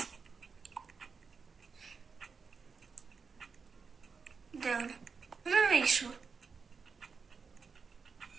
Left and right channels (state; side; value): quieter; left; 5.2 dB